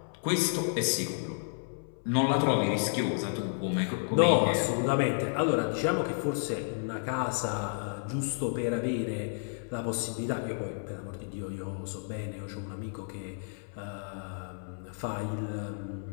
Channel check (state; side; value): silent; right; 57 dB below the other